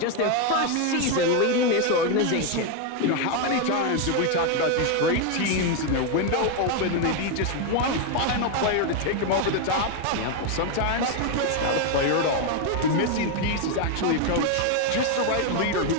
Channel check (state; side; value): different; both; correlation 0.01